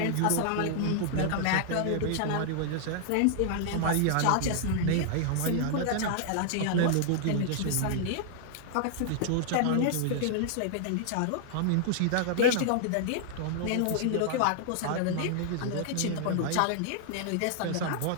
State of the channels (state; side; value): different; both; correlation -0.01